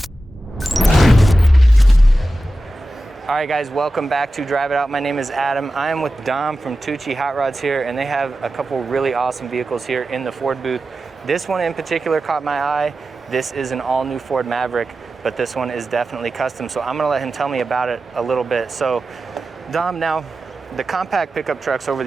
right guys, welcome back to Drive It Out. My name is Adam. I am with Dom from Tucci Hot Rods here, and they have a couple really awesome vehicles here in the Ford booth. This one in particular caught my eye. This is an all new Ford Maverick, but this one is definitely custom. So I'm gonna let him tell me about it a little bit. So Dom, now the compact pickup trucks over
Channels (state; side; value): normal; both; correlation 0.93